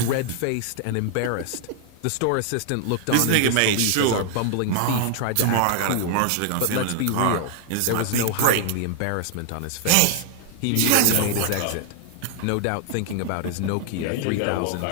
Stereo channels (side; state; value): both; different; correlation 0.00